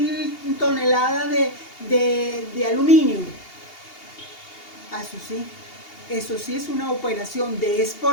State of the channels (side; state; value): right; late; 2.8 ms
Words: toneladas de aluminio, eso sí es una operación de